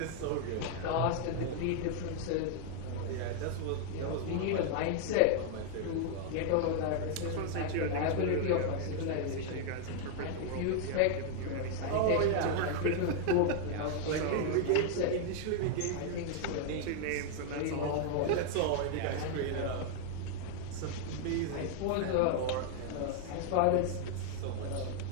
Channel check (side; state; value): both; different; correlation 0.00